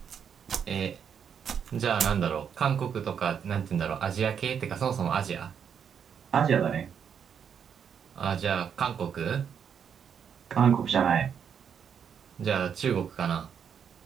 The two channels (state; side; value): quieter; left; 7.6 dB